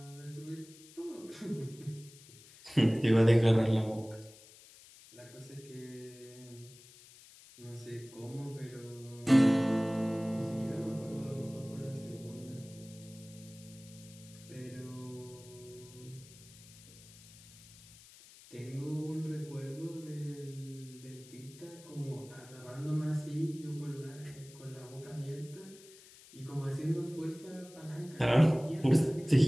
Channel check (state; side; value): noise; left; hiss, 21 dB below the sound